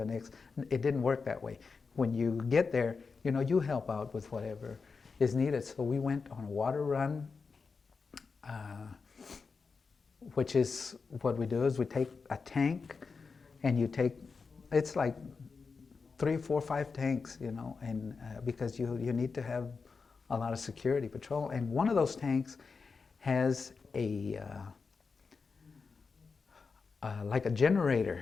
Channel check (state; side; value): quieter; right; 4.9 dB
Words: next. It didn't work that way. When you get there, you help out with whatever is needed. So we went on a water run, which is what we do is we take a tank, and it's like 3, 4, 5 tanks, and because you need to have a lot of security patrol. And one of those tanks has like a